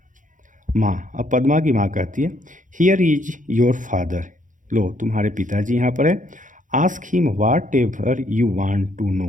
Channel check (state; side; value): late; left; 0.37 ms